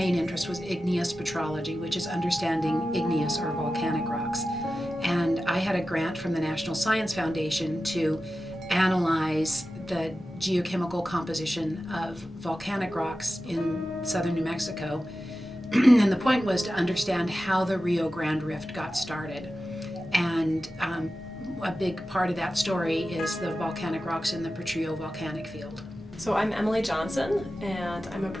interest was igneous petrology, which is understanding igneous or volcanic rocks. And I had a grant from the National Science Foundation to analyze the geochemical composition of volcanic rocks in southern New Mexico. And the point was to understand how the Rio Grande Rift got started. And a big part of that story is the volcanic rocks in the Potrillo volcanic field. So I'm Emily Johnson, and I'm a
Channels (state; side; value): normal; both; correlation 0.93